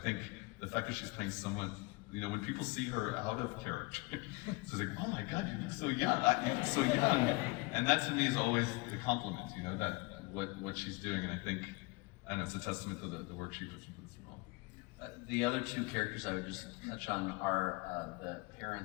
the fact that she's playing someone, when people see her out of character, it's like, oh my God, you look so young, you look so young. And that to me is always the compliment, that what she's doing, and I think, it's a testament to the work she puts into this role. The other 2 characters I would just touch on are the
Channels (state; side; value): quieter; right; 25.4 dB